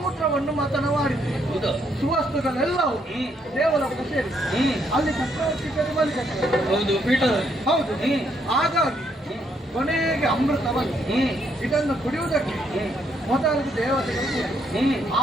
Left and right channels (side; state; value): both; normal; correlation 0.73